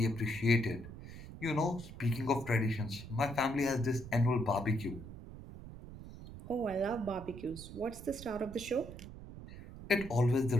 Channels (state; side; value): noise; right; rumble, 13 dB below the sound